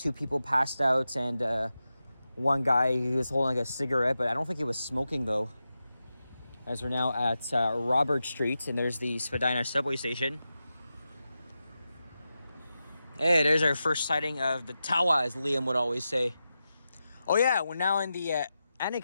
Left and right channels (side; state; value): both; inverted; correlation -0.91